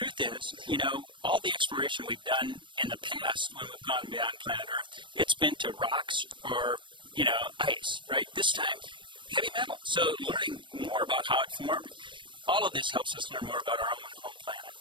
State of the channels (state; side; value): late; left; 0.24 ms